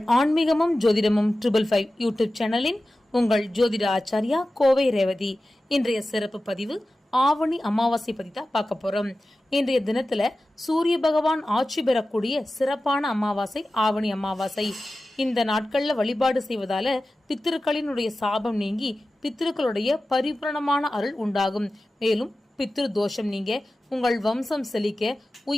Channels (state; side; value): normal; both; correlation 0.95